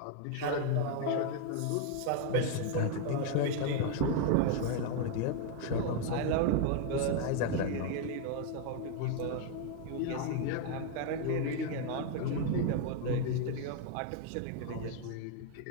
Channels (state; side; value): different; both; correlation 0.00